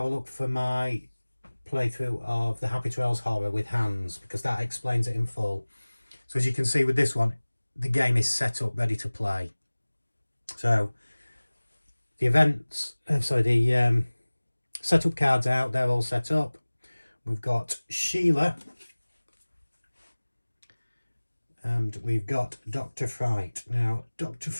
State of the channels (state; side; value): inverted; both; correlation -1.00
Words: a look for my playthrough of the Happy Trails Horror with Hands, because that explains it in full. So as you can see with this one, the game is set up ready to play. So the setup cards out, they're all set up. We've got Sheila and we've got Dr. Fright. Now Dr.